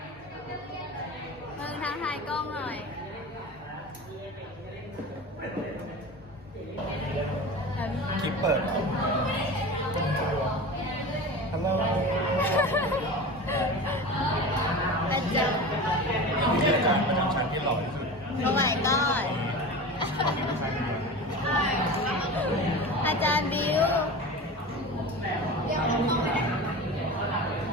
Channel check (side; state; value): both; normal; correlation 0.31